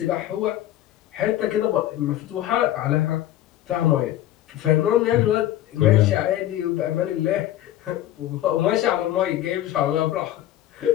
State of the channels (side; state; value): right; quieter; 13.2 dB